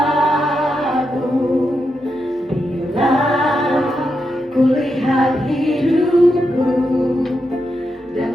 bila ku lihat hidupku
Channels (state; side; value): normal; both; correlation 0.85